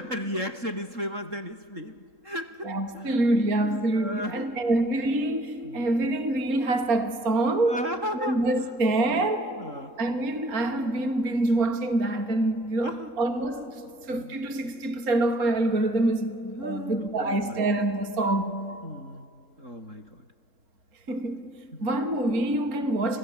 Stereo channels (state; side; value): late; left; 3.7 ms